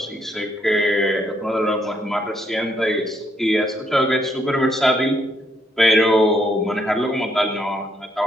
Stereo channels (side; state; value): both; normal; correlation 0.73